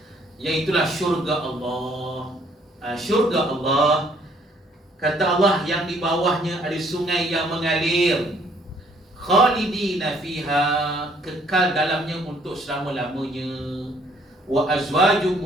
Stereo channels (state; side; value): normal; both; correlation 0.63